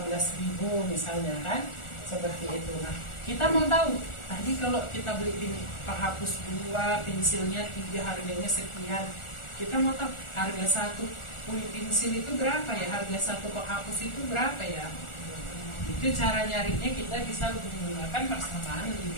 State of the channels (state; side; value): late; right; 1.4 ms